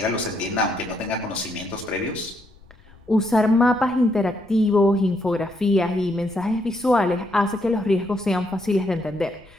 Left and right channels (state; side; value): noise; left; rumble, 25 dB below the sound